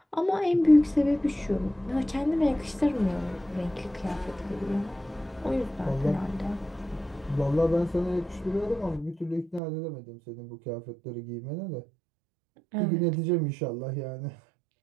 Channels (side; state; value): left; drops out; at 9.6 s